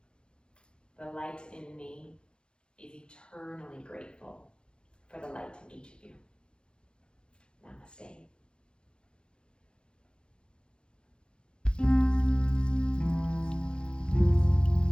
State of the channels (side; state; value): right; late; 0.052 ms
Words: The light in me is eternally grateful for the light in each of you. Namaste.